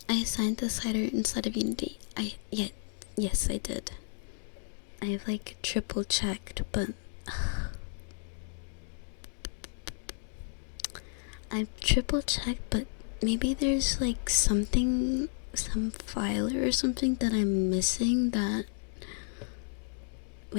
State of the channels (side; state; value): right; silent; digital silence